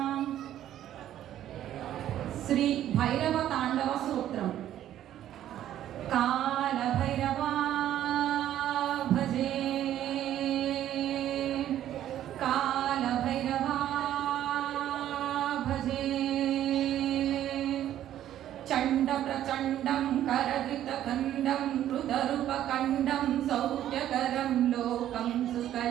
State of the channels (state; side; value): quieter; left; 11.9 dB